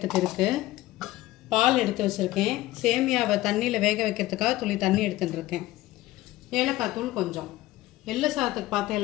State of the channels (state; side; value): quieter; right; 17.2 dB